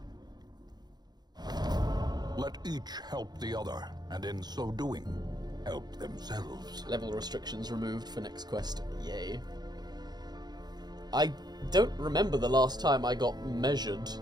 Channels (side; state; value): left; late; 0.20 ms